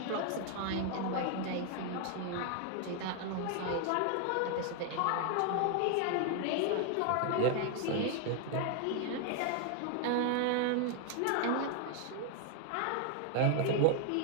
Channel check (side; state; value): both; different; correlation 0.01